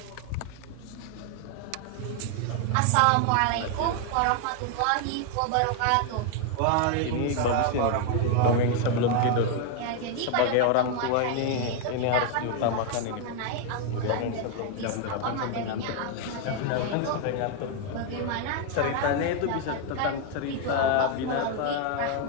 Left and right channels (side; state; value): both; different; correlation 0.00